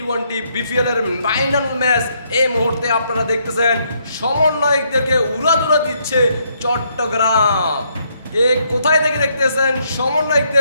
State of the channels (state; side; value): inverted; both; correlation -0.73